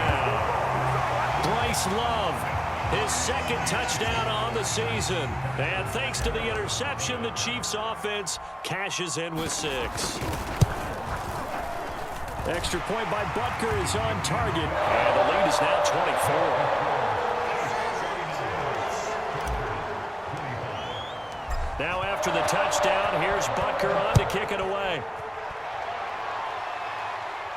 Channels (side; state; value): both; identical; correlation 1.00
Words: Bryce Love, his 2nd touchdown on the season. And thanks to the interception, the Chiefs offense cashes in with 6. Extra point by Butker is on target. And the lead is now 24. Now after the touchdown, here's Butker on to kick it away.